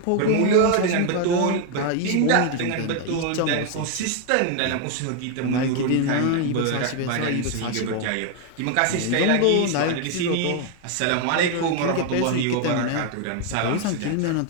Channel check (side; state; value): both; different; correlation 0.01